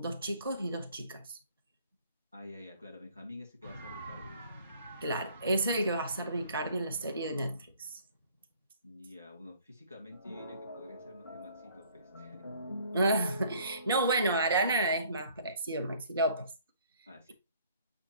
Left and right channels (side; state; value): both; inverted; correlation -0.57